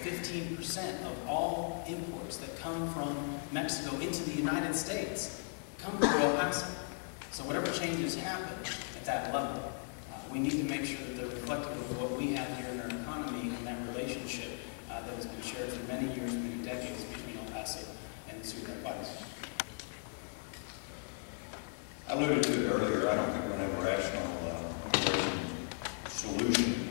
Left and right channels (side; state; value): right; silent; 53 dB below the other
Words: of all imports that come from Mexico into the United States come through El Paso. So whatever changes happen at that level, we need to make sure that they're reflective of what we have here in our economy and that relationship that has been shared for many years, many decades between El Paso and Ciudad Juarez. I alluded to it earlier. I don't think we're going to have a rational immigration solution